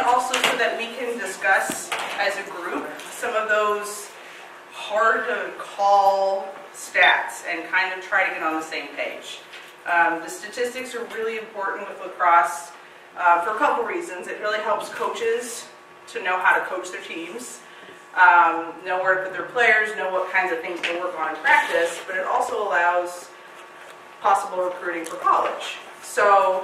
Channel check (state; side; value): identical; both; correlation 1.00